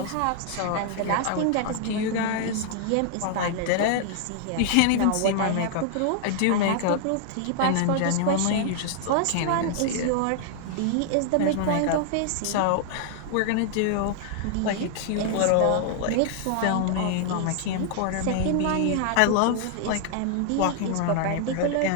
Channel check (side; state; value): both; different; correlation -0.01